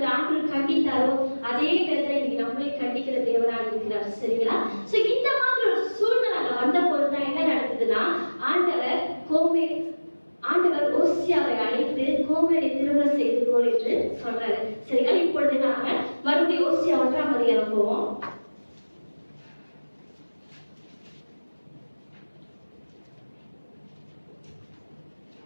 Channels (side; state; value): both; inverted; correlation -1.00